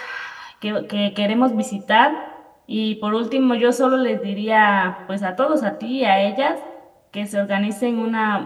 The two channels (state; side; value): identical; both; correlation 1.00